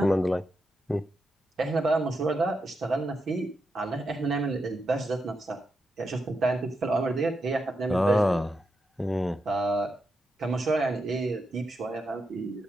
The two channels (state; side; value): normal; both; correlation 0.85